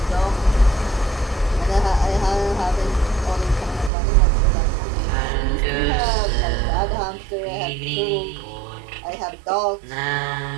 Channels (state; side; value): drops out; left; at 3.9 s